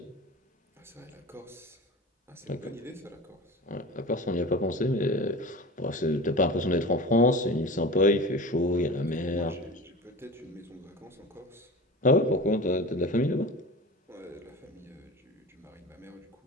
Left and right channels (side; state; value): both; normal; correlation 0.34